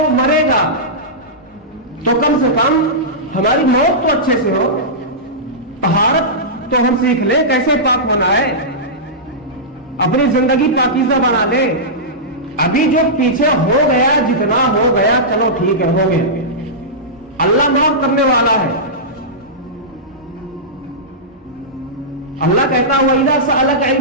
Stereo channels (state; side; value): normal; both; correlation -0.14